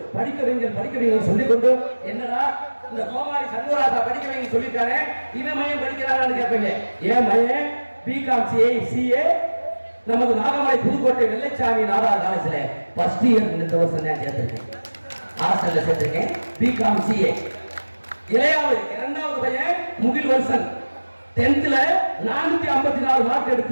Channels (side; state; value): both; inverted; correlation -1.00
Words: படிக்க வைங்கள் சொல்லிக்கொண்டு, என்னடா இந்த கோமாரி சண்முகராஜா படிக்க வைங்க சொல்லிட்டாரு, இவன் மையம் படிக்கிறாரான்னு கேட்பீங்க. ஏன் மையம் பிகாம் சிஏ நமது நாகமலை புதுக்கோட்டை வெள்ளைச்சாமி நாடா காலேஜ்ல ஃபர்ஸ்ட் இயர் இந்த வருஷம் தான் சேர்த்திருக்கேன், ஹாஸ்டல்ல சேர்த்திருக்கேன். பிகாம் சிஏ இளையாவது இரண்டாவது பையன் முகில் வருஷன் 10th 454 மார்க்